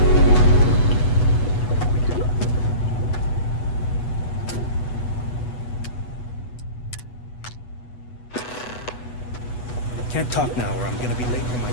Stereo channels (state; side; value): late; right; 8.1 ms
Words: Can't talk now or I'm gonna be late for my